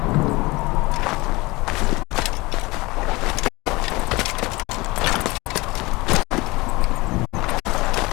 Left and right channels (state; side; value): quieter; right; 22.6 dB